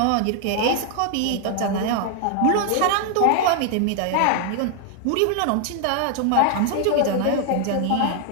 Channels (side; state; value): both; different; correlation 0.00